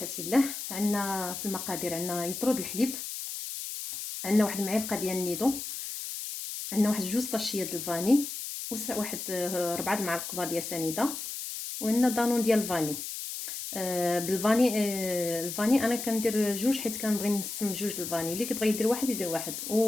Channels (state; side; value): noise; left; hiss, 6 dB below the sound